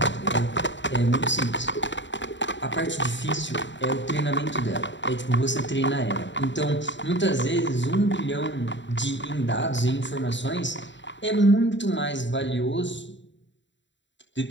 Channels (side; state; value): right; late; 0.53 ms